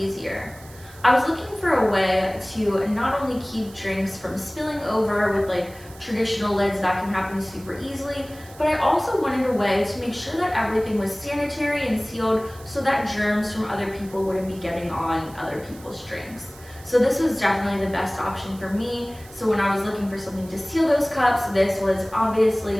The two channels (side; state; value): right; noise; hiss, 22 dB below the sound